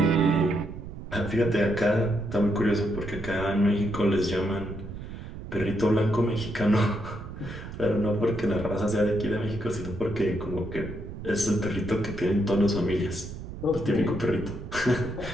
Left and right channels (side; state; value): right; noise; rumble, 10 dB below the sound